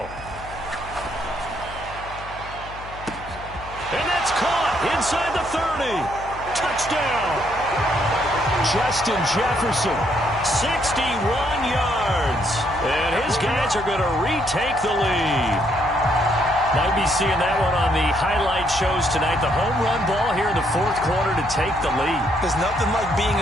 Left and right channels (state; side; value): noise; left; hum, 15 dB below the sound